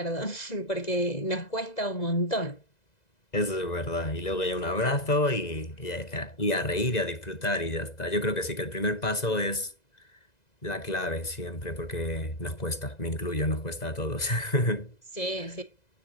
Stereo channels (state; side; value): late; right; 2.0 ms